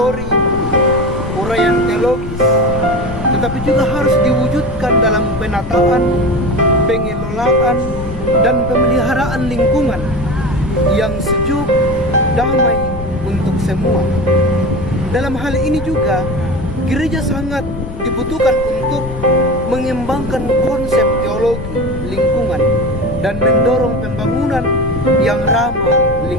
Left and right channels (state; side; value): noise; left; rumble, 10 dB below the sound